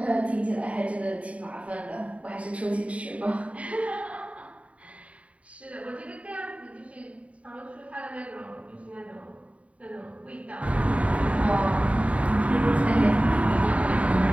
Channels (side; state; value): left; late; 0.066 ms